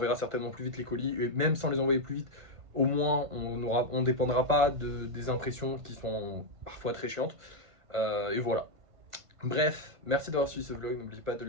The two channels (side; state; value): left; late; 1.5 ms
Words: certainement plus vite les colis, et même sans les envoyer plus vite, au moins on dépendra pas des impressions qui sont parfois très chiantes. Et voilà. Bref, merci d'avoir suivi ce vlog, n'oubliez pas de